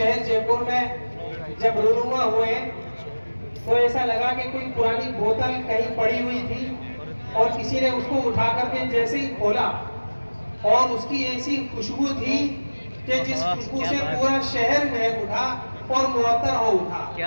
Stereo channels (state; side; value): inverted; both; correlation -1.00